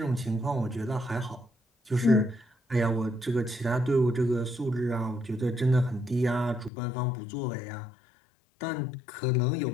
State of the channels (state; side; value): drops out; right; at 6.7 s